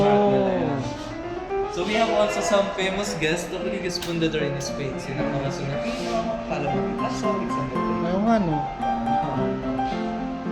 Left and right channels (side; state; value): both; identical; correlation 1.00